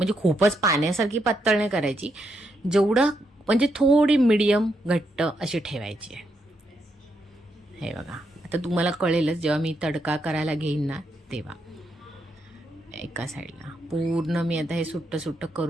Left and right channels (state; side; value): normal; both; correlation 0.80